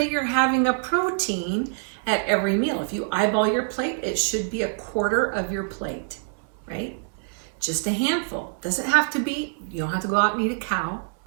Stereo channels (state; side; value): silent; left; 62 dB below the other